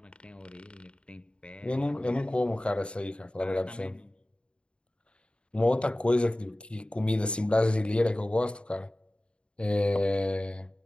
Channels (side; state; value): right; late; 0.055 ms